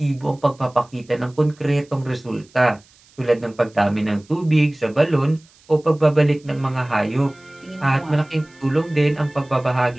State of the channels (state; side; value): noise; right; hiss, 29 dB below the sound